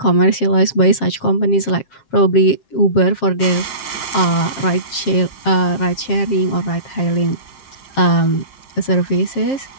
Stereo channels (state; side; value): late; right; 7.5 ms